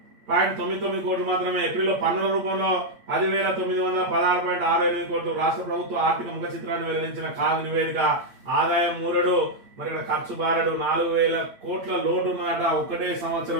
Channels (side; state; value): left; late; 8.7 ms